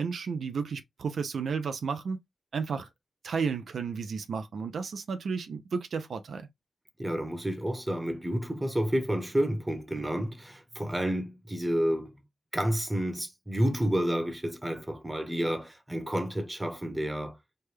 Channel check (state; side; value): normal; both; correlation 0.93